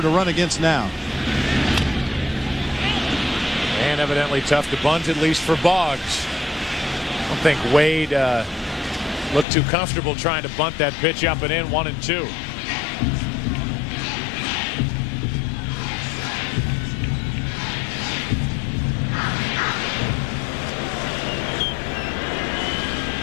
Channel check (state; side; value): drops out; right; at 9.5 s